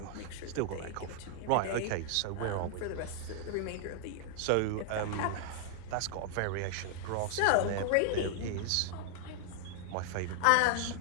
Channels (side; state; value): both; different; correlation 0.00